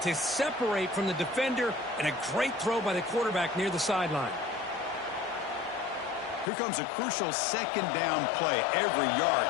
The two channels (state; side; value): drops out; right; at 6.5 s